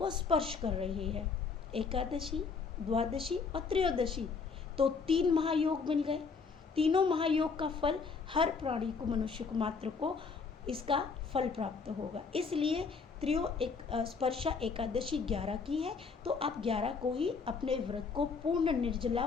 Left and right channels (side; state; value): right; quieter; 5.0 dB